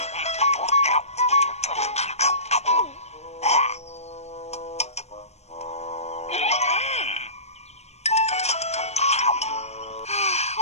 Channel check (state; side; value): late; right; 0.31 ms